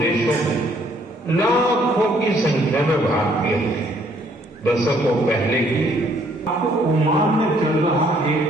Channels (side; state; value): both; normal; correlation 0.65